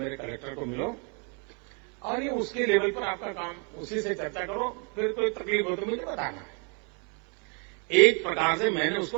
कलेक्टर को मिलो और ये उसके लेवल पर आपका काम, उसी से चर्चा करो। फिर कोई तकलीफ हो तो मुझे बताना। एक प्रकार से मैंने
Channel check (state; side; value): quieter; left; 36.6 dB